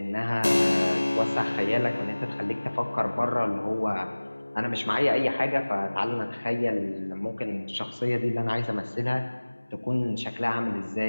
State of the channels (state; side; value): inverted; both; correlation -1.00